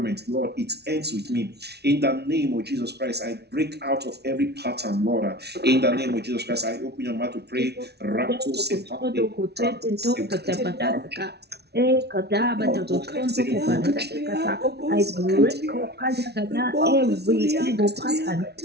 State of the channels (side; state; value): left; late; 0.49 ms